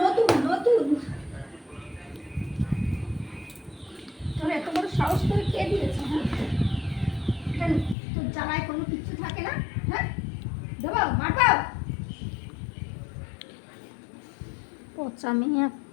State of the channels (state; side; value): drops out; right; at 8.0 s